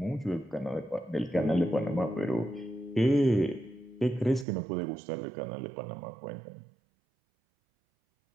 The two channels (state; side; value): drops out; left; at 4.5 s